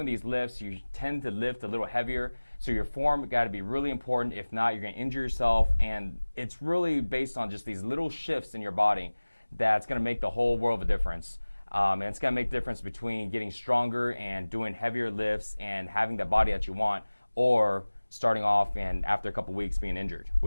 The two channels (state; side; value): inverted; both; correlation -1.00